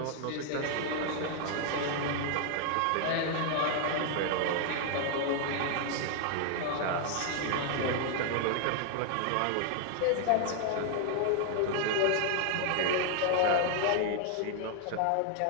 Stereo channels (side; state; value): both; different; correlation 0.00